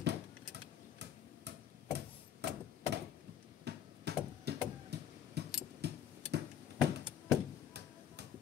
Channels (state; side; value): quieter; right; 9.4 dB